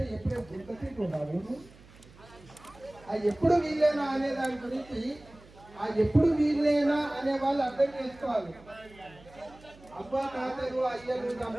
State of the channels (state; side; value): noise; right; hum, 23 dB below the sound